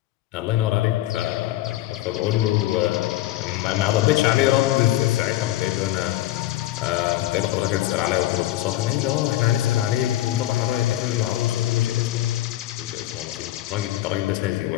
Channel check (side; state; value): right; quieter; 15.0 dB